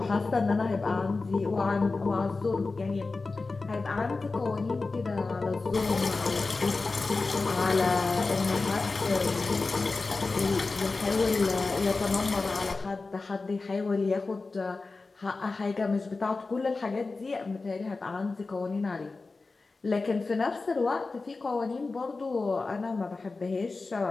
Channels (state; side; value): quieter; right; 3.8 dB